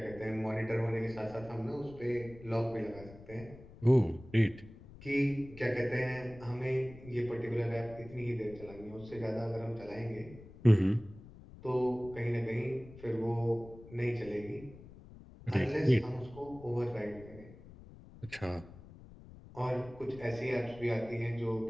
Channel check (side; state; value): left; noise; rumble, 18 dB below the sound